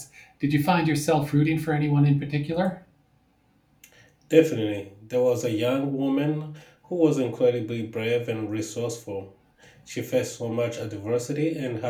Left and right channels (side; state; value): both; identical; correlation 1.00